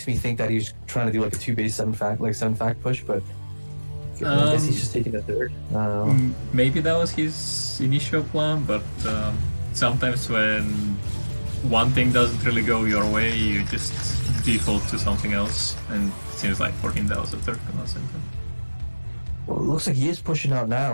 me think that he's trying to do like a 2-base 7-fact push, but I guess he's just taking a third. Maybe that was his initial plan, but sometimes when one thing doesn't really go your way, you just default to something else, and it seems like for him that was the third command center. Well, it looks like he is pushing out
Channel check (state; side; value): inverted; both; correlation -1.00